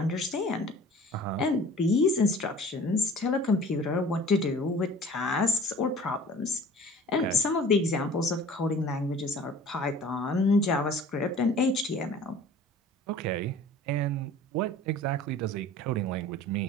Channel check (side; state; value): both; normal; correlation 0.45